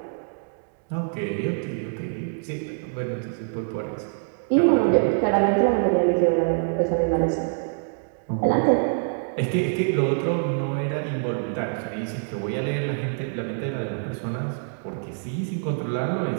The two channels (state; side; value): silent; left; digital silence